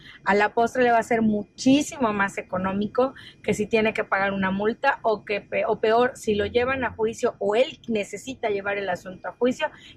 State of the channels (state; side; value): identical; both; correlation 1.00